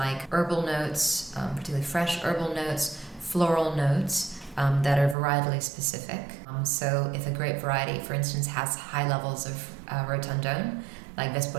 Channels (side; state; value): left; drops out; at 5.2 s